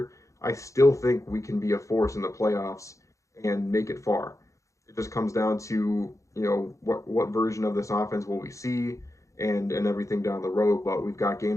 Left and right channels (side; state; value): right; late; 0.15 ms